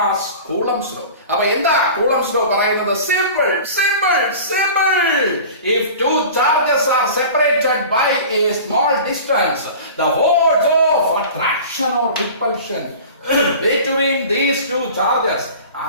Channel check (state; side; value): inverted; both; correlation -0.39